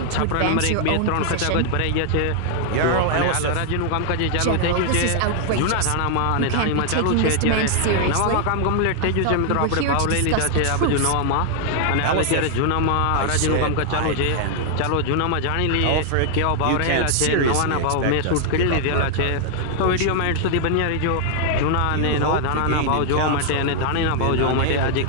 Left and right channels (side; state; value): both; different; correlation 0.00